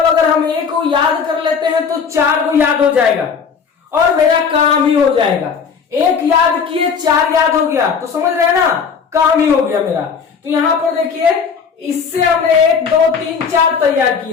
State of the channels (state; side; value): quieter; right; 6.1 dB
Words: अगर हम 1 को याद कर लेते हैं तो 4 को याद हो जाएगा और मेरा काम ही हो जाएगा। 1 याद किए 4 याद हो गया, तो समझ रहे हैं ना, काम ही हो गया मेरा। तो यहां पर देखिए, इससे हमने 1 2 3 4 तैयार